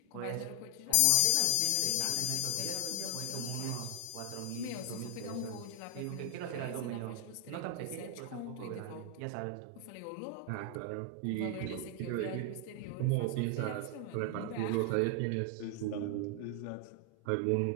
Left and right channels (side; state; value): both; different; correlation 0.00